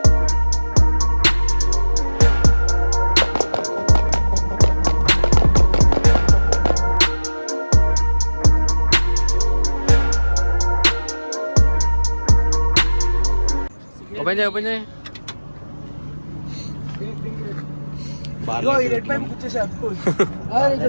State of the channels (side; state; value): both; inverted; correlation -1.00